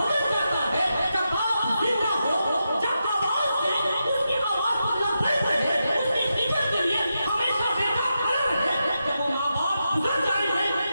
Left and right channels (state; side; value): inverted; both; correlation -0.87